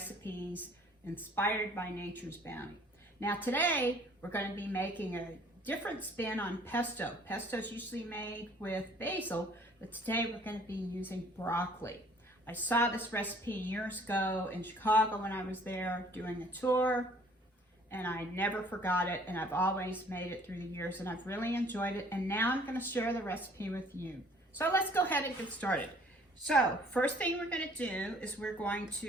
inspired by nature's bounty. Now today we're going to be making a different spin on pesto. Pesto is usually made with basil, but today we're going to be using broccoli. I saw this recipe years ago in Chicago when I was there doing a tour, and I never forgot it, and I've always made it through the years, and I've really enjoyed it, and now I'm going to share the recipe with you. So let's go ahead and get started. So first thing we're going to do is we're going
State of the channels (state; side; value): normal; both; correlation 0.56